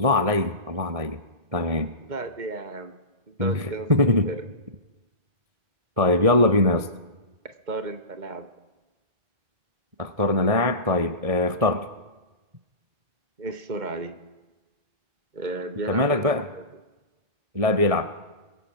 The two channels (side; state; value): left; late; 1.7 ms